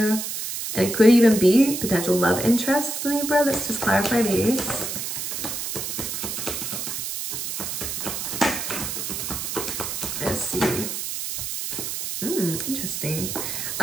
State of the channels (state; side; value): noise; right; hiss, 4 dB below the sound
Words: And it could even be potential love interests, Libra. Let's just clarify these. Let's see. Interesting.